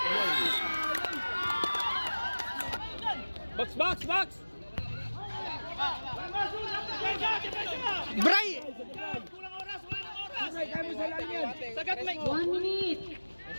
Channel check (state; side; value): inverted; both; correlation -1.00